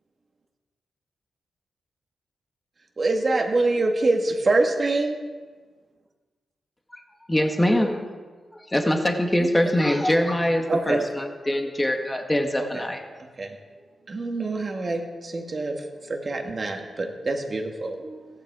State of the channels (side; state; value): both; normal; correlation 0.95